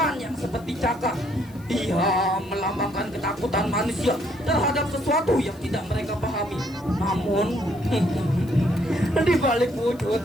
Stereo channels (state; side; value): noise; left; hiss, 26 dB below the sound